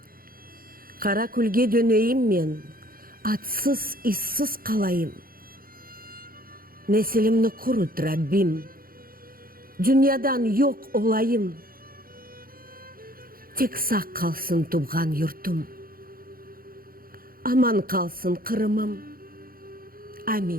Kara külge döneyim men, atsız, işsiz kalayım. Nesilimni kurut Rabbim, dünyadan yok olayım. Tek sağ kalsın tuğan yurtum, aman kalsın Kırım'ım.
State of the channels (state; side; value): late; left; 0.42 ms